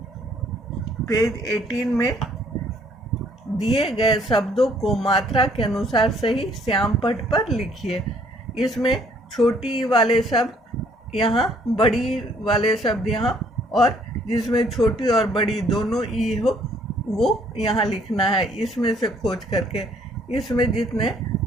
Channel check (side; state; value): both; normal; correlation 0.63